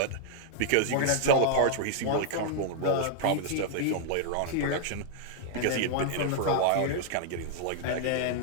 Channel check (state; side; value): different; both; correlation -0.01